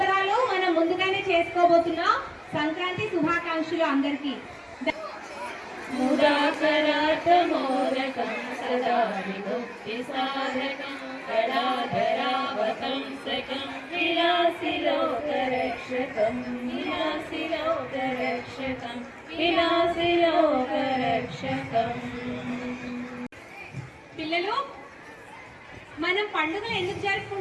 మనం ముందుగానే చేసుకోబోతున్నాం. సంక్రాంతి శుభాకాంక్షలు అందరికీ. పిల్లలు, మనం పండుగలు ఎందుకు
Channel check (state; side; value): identical; both; correlation 1.00